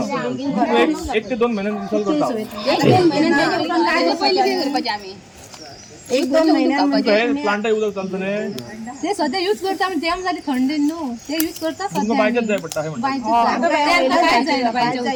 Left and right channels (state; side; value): identical; both; correlation 1.00